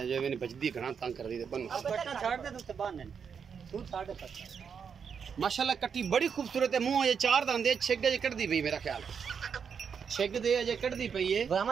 जो मैंने बजदी घना तंग कर दी थे बनो माशाल्लाह। कट्टी बड़ी खूबसूरत है, मुंह अजे चार दांदे छिग अजे कटदी पई, मेरा ख्याल छिग दे अजे कटदी पई है।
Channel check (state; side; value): quieter; left; 6.7 dB